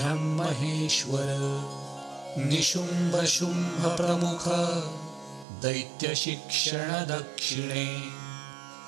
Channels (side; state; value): left; drops out; at 5.5 s